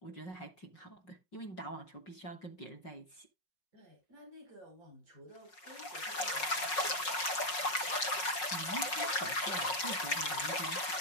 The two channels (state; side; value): late; right; 5.5 ms